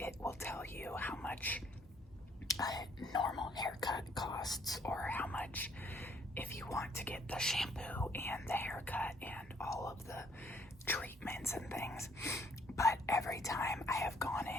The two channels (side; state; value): both; normal; correlation 0.65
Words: will tell you how much a normal haircut costs, or how much if you want to get the shampoo and the haircut and all of the treatments and things. But every time I have gone